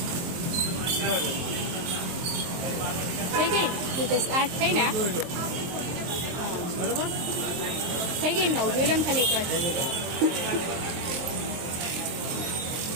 થઈ ગઈ. આ થઈ ને થઈ ગઈ. નવ જોઈ લો ને ખાલી એક વાર.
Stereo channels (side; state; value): left; late; 23 ms